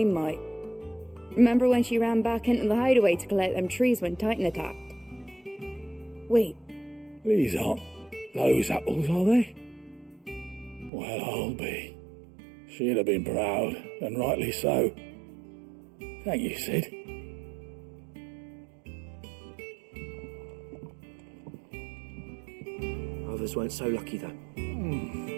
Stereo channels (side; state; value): left; drops out; at 10.9 s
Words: might. Remember when she ran back into the hideaway to collect them trees when Titan attacked? Wait. These aren't those apples, are they? Well, I'll be. She'd have been proud, and rightly so. Thank you, Sid. Others weren't so lucky, though.